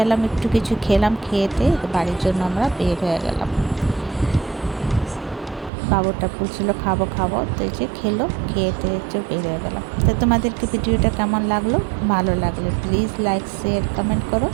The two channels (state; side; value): drops out; left; at 5.7 s